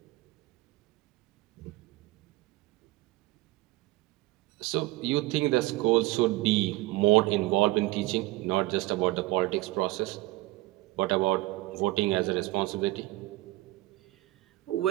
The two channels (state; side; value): quieter; left; 19.2 dB